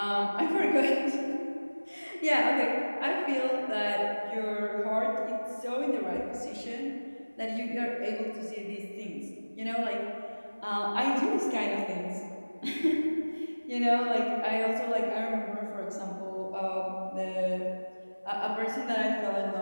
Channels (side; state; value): both; inverted; correlation -1.00